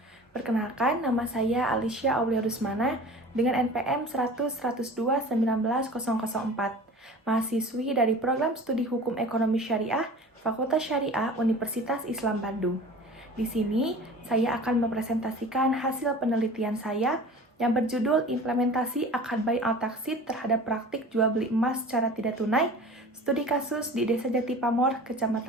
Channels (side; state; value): both; normal; correlation 0.40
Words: Perkenalkan, nama saya Alicia Aulia Rusmana dengan NPM 100-102-19-004, mahasiswi dari Program Studi Hukum Ekonomi Syariah, Fakultas Syariah Universitas Islam Bandung. Di sini, saya akan mempresentasikan hasil penelitian saya yang berjudul Implementasi Akad Bai Al-Taksid terhadap praktik jual beli emas secara tidak tunai, studi kasus di Desa Jati Pamor,